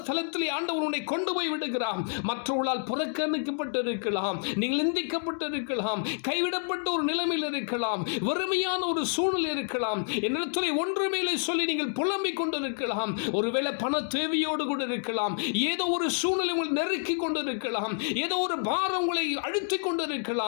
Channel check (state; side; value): silent; right; 59 dB below the other